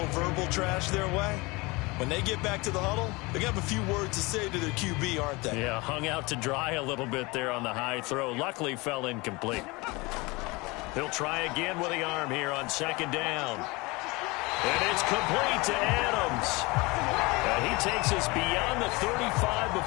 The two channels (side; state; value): right; quieter; 24.6 dB